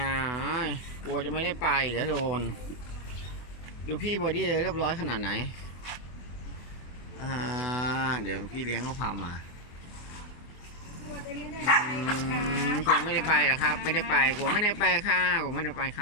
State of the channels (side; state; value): right; late; 24 ms